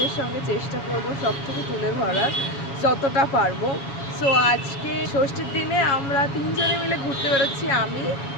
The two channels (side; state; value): right; late; 7.2 ms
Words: সঙ্গে চেষ্টা করব সব থেকে তুলে ধরার যতটা পারবো। সো আজকে ষষ্ঠীর দিনে আমরা তিনজনে মিলে ঘুরতে বেরোচ্ছি, আমি,